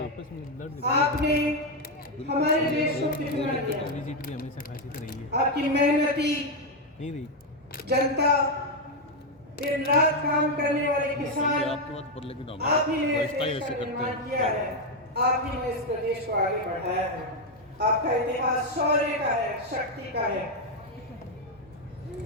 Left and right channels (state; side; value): normal; both; correlation 0.04